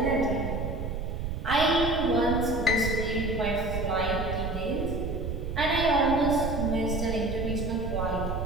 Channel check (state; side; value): noise; right; rumble, 4 dB below the sound